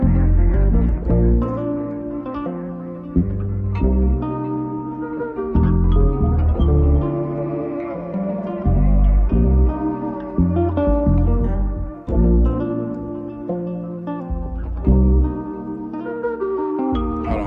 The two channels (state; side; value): identical; both; correlation 1.00